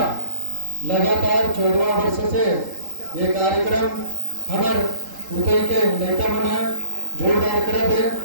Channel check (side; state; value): left; late; 3.8 ms